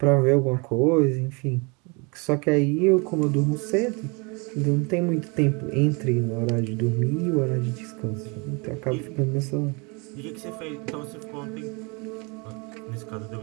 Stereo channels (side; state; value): left; quieter; 30.5 dB